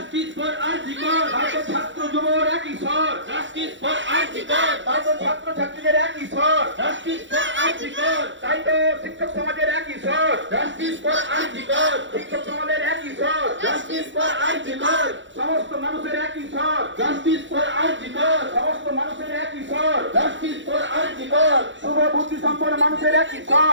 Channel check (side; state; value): left; late; 0.54 ms